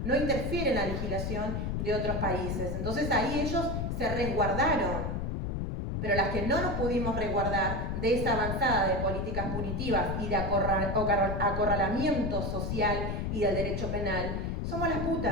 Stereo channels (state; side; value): noise; left; rumble, 2 dB below the sound